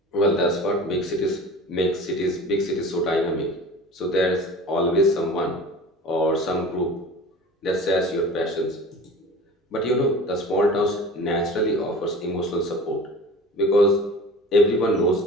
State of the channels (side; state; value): both; normal; correlation 0.39